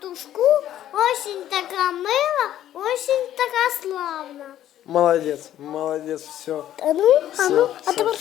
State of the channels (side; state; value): right; quieter; 12.0 dB